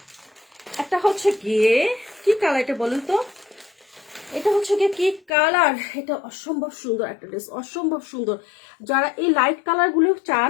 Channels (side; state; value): right; drops out; at 5.3 s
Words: একটা হচ্ছে গিয়ে কি কালার, এটা বলুন তো, এটা হচ্ছে গিয়ে কি কালার, এটা অসম্ভব সুন্দর একটা ড্রেস, অসম্ভব সুন্দর। যারা এই লাইট কালার গুলো